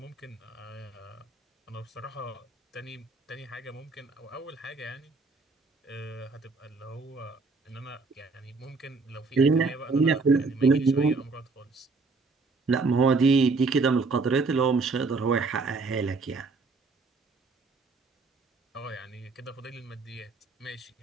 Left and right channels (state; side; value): quieter; left; 4.0 dB